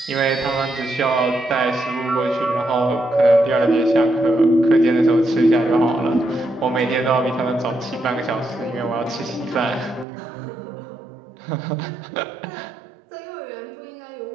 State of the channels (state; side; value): drops out; left; at 10.1 s